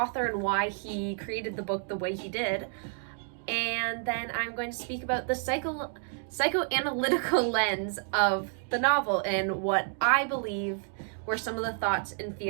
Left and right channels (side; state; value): left; silent; 56 dB below the other